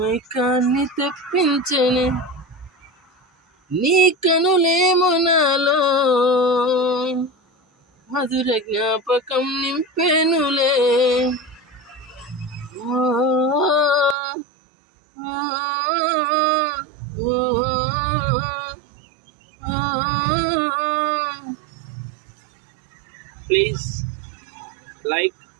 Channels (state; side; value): drops out; left; at 14.2 s